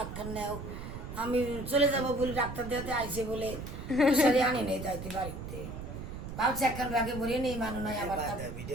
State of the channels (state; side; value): noise; right; rumble, 8 dB below the sound